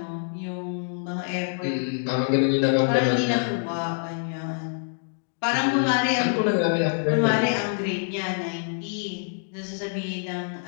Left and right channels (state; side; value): silent; right; 61 dB below the other